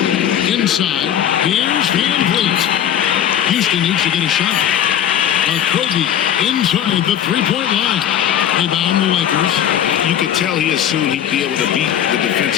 Inside. Here's Van Vliet. Houston needs to get a shot. Okogie inside the three-point line. Rebound the Lakers. You could tell he assumed he'd be able to beat the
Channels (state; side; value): quieter; right; 10.0 dB